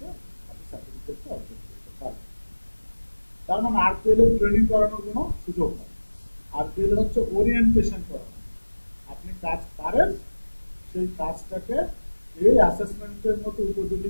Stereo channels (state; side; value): inverted; both; correlation -1.00